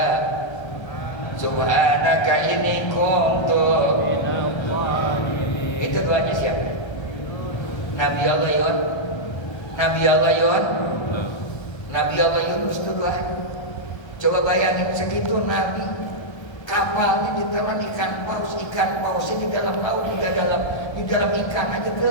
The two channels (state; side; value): late; right; 1.3 ms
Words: subhanaka inni kuntu. Itu doanya siapa? Nabi Allah Yunus. Nabi Allah Yunus. Nabi Allah Yunus itu doanya. Coba bayangin segitu Nabi, kapalnya ditelan ikan paus di dalam laut, di dalam ikan aja